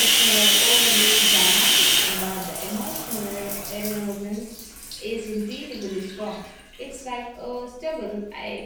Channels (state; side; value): identical; both; correlation 1.00